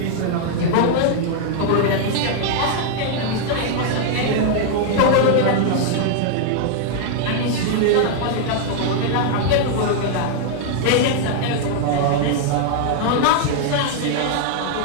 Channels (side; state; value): both; different; correlation 0.00